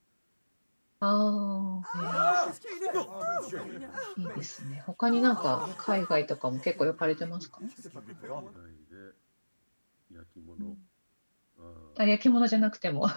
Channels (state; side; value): inverted; both; correlation -1.00